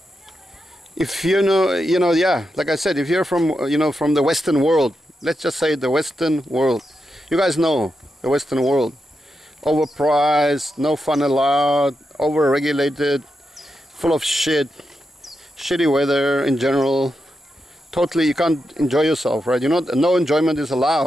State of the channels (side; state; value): both; normal; correlation 0.87